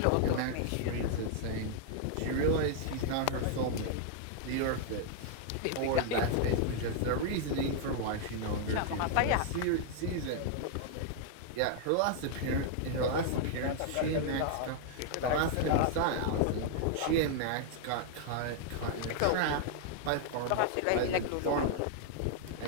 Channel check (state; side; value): different; both; correlation -0.01